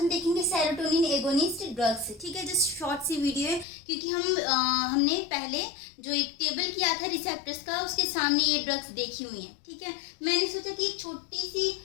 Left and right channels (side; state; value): right; drops out; at 3.7 s